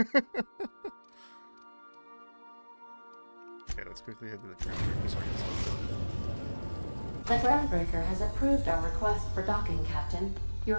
let's quickly head to the groundbreaker so I can sell it. The groundbreaker has approved our request for docking, Captain.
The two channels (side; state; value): both; inverted; correlation -1.00